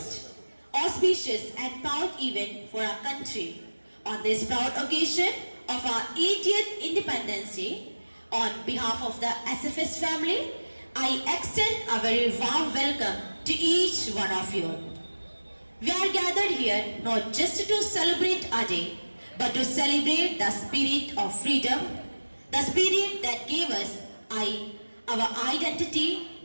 auspicious and proud event for our country. On this proud occasion of our 80th Independence Day, on behalf of the SFS family, I extend a very warm welcome to each one of you. We are gathered here not just to celebrate our day, but to celebrate the spirit of freedom, the spirit that gave us our identity,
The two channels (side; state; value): both; inverted; correlation -1.00